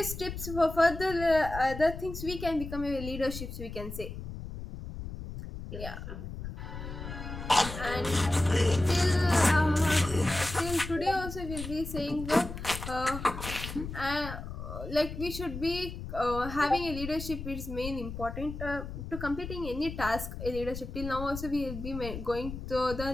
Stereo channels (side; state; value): left; noise; rumble, 8 dB below the sound